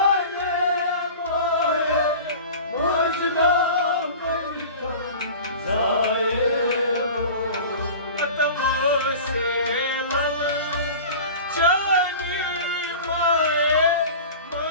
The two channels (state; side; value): inverted; both; correlation -0.37